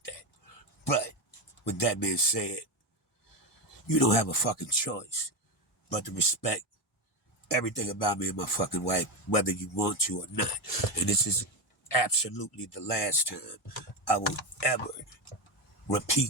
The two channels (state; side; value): normal; both; correlation 0.14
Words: that. But with that being said, you don't have a fucking choice but to respect everything about me and my fucking wife, whether you want to or not. And this is absolutely the last time I will ever